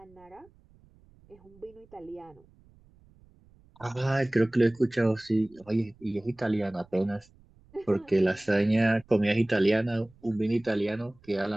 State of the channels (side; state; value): right; noise; rumble, 29 dB below the sound